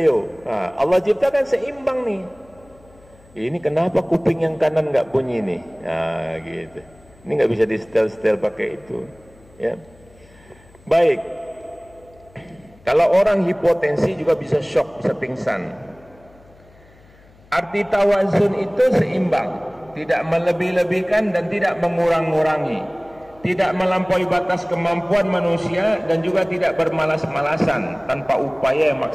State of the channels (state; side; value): noise; left; hum, 27 dB below the sound